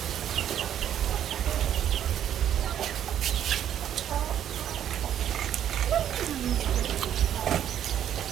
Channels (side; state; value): left; quieter; 10.2 dB